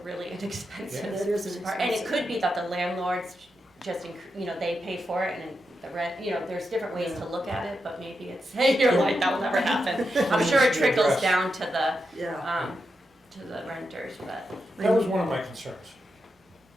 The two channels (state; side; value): normal; both; correlation 0.86